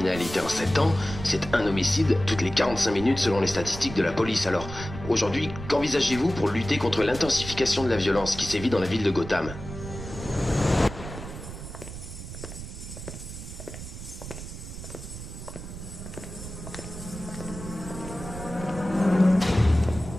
en 7 ans, c'est un homicide toutes les 45 minutes selon les statistiques de la police. Alors, aujourd'hui, qu'envisagez-vous pour lutter contre l'intensification de la violence qui sévit dans la ville de Gotham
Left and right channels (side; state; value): right; noise; rumble, 11 dB below the sound